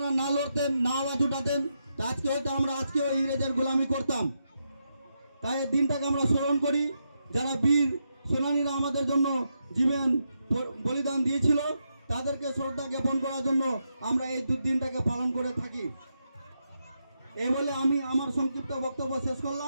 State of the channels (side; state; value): both; inverted; correlation -0.83